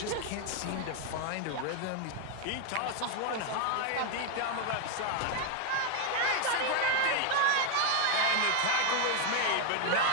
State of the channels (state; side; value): different; both; correlation 0.01